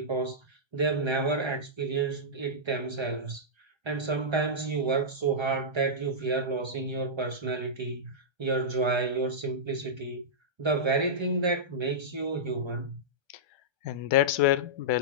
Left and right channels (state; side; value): late; left; 1.3 ms